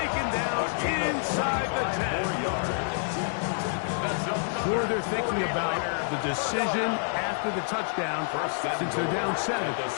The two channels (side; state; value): right; silent; digital silence